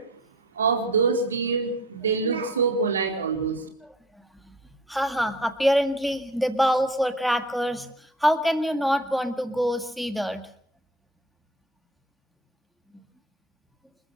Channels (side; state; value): both; normal; correlation 0.44